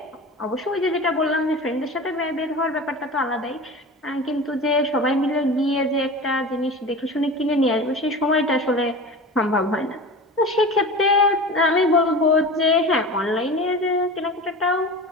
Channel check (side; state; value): both; normal; correlation 0.32